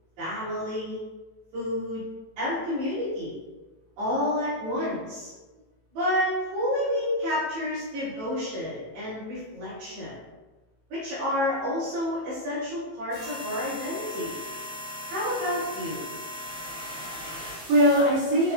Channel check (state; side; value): late; left; 18 ms